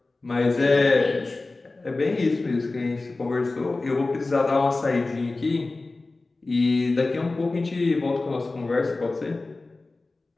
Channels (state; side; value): quieter; right; 3.3 dB